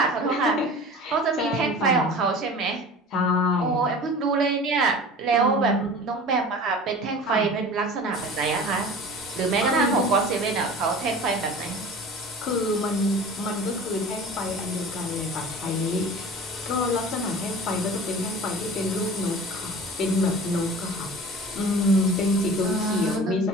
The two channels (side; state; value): both; normal; correlation 0.39